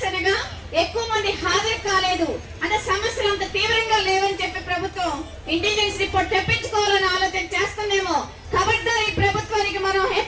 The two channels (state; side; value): identical; both; correlation 1.00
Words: ఎక్కువ మంది హాజరు కాలేదు అంటే సమస్యలు అంత తీవ్రంగా లేవని చెప్పి ప్రభుత్వం ఇంటెలిజెన్స్ రిపోర్ట్ తెప్పించుకోవాలని ఆలోచన చేస్తుందేమో. కాబట్టి ఈ ప్రభుత్వానికి మనం